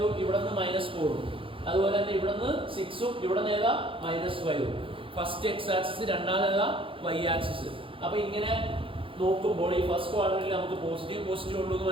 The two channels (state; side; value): late; left; 0.26 ms